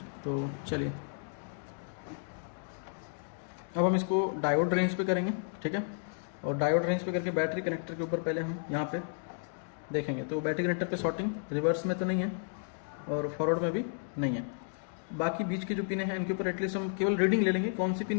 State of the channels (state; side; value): silent; right; digital silence